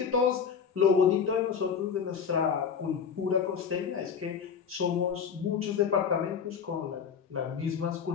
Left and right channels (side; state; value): right; quieter; 6.8 dB